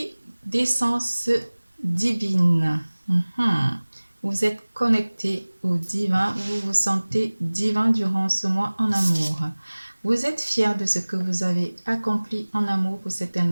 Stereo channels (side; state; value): both; inverted; correlation -1.00